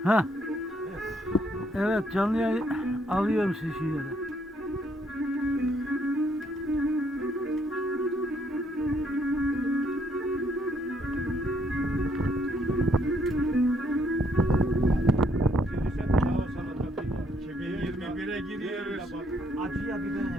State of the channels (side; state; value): both; normal; correlation 0.70